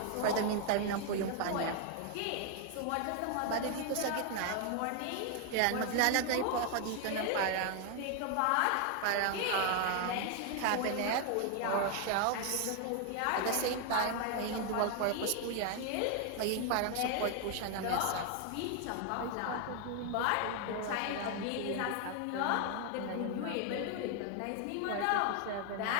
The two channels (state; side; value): different; both; correlation 0.00